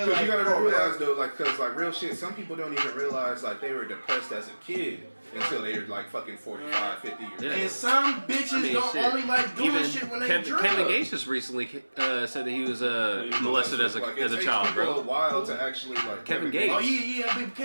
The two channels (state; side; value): inverted; both; correlation -1.00